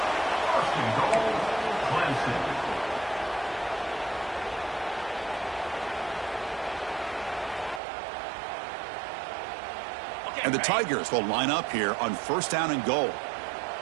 And the Tigers will line up here on 1st down and goal.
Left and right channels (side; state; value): left; drops out; at 7.8 s